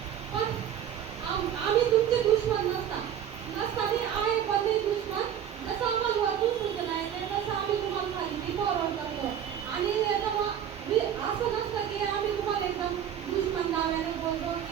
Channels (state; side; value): quieter; left; 9.5 dB